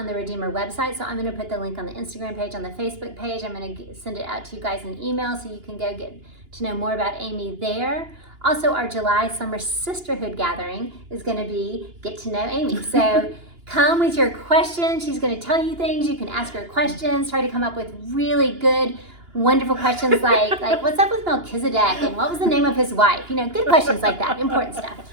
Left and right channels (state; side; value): late; left; 2.9 ms